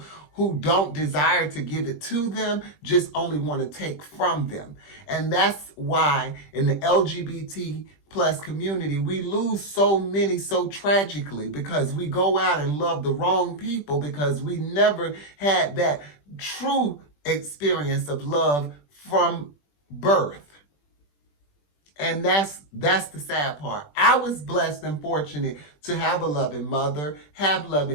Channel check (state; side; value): late; right; 20 ms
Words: who don't desire to give it to them, just only want to take from them. And that's why in the LGBT plus community, we lose so many so tragically, because we go out and love the wrong people because we never had that true experience of love from birth. And that's the sad part. I was blessed and fortunate to have a loving mother, have